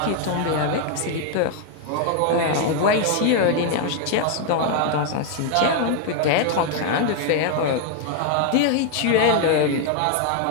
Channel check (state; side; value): different; both; correlation 0.00